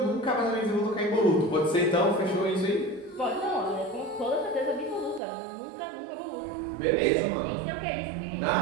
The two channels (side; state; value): left; drops out; at 5.2 s